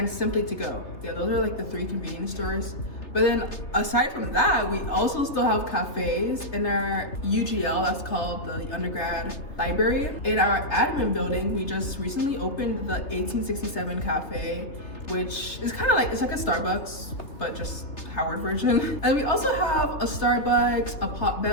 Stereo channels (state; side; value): late; right; 3.3 ms